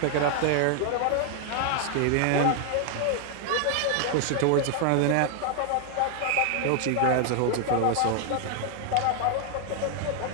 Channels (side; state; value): both; different; correlation 0.00